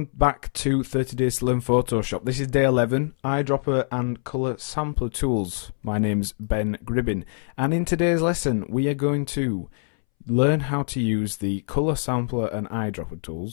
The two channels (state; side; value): silent; right; 62 dB below the other